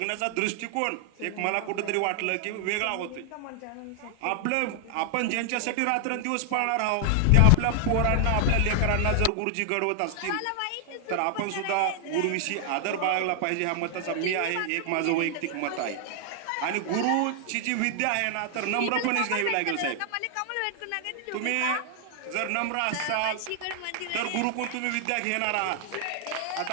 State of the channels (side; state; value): both; different; correlation 0.00